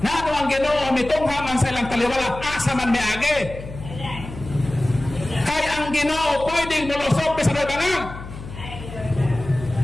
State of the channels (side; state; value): left; noise; hum, 12 dB below the sound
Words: na ano ang Ginoo mitong ha man sa ilang kaliwala asa man may agi kaya ang Ginoo pwedeng mulusok sa bangag.